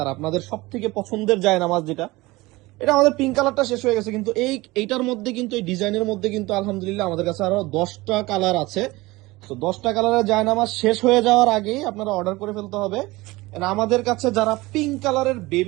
আর আপনাদের সব থেকে পছন্দের জায়নামাজ যেটা, এটা আমাদের পিঙ্ক কালারটা শেষ হয়ে গেছে, কিন্তু এইটার মধ্যে কিন্তু এই ডিজাইনের মধ্যে কিন্তু আলহামদুলিল্লাহ আমাদের কাছে আরো 10টা কালার আছে। তো 10টা কালারের জায়নামাজ শেষ হয়ে যাওয়ার আগেই আপনারা অর্ডার করে ফেলতে হবে। And আমাদের কাছে যারা পিঙ্ক কালারের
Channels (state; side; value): quieter; left; 21.0 dB